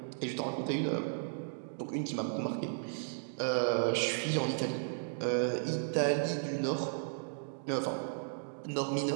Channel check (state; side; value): silent; left; digital silence